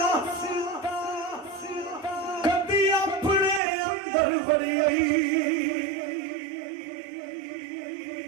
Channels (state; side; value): drops out; left; at 3.6 s